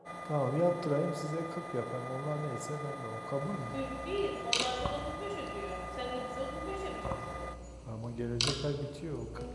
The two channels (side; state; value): both; identical; correlation 1.00